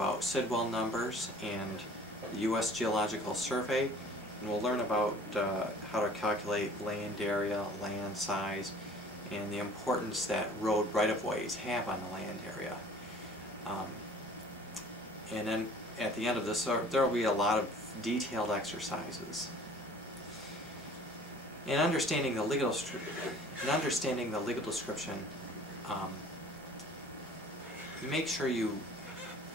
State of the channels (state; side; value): normal; both; correlation 0.49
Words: Sidwell numbers and the U.S. Geological Survey, and we'll learn about how to calculate land area, land size, and the importance that road right-of-ways have on the land area. And then at the end of this, there will be a lot of detailed exercises. In understanding the legal description, make sure you,